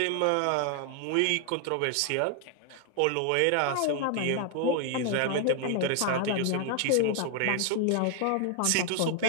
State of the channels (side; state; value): both; different; correlation 0.00